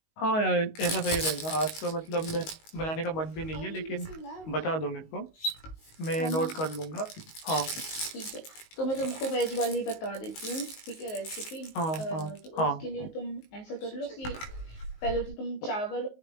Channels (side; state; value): right; late; 19 ms